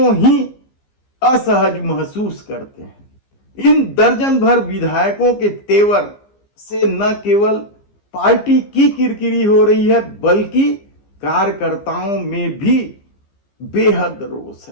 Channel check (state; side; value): late; right; 15 ms